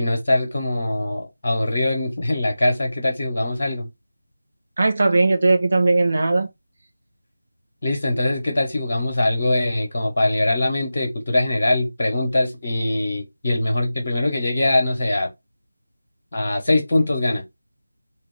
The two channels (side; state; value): both; inverted; correlation -0.94